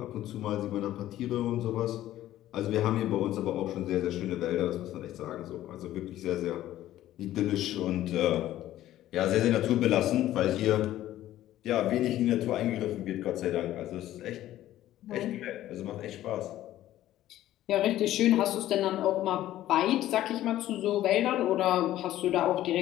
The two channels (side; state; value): right; quieter; 13.7 dB